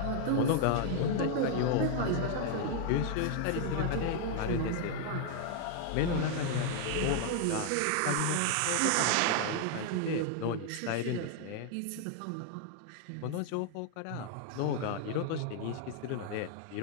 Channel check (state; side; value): different; both; correlation 0.00